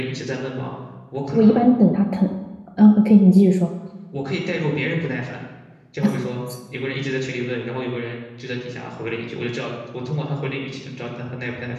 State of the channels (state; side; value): identical; both; correlation 1.00